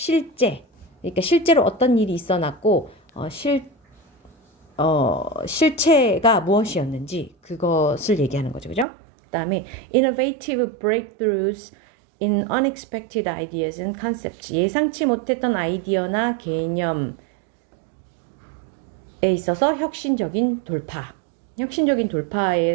그러니까 실제로 어떤 일이 있어났고 실체가 무엇이었는지 그것을 얘기하는 거죠. 그죠? 그다음에 innovative breakthroughs in unexpected ideas and concepts. 예상치 못했던 아이디어나 개념에 있어서 혁신적인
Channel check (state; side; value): drops out; left; at 8.8 s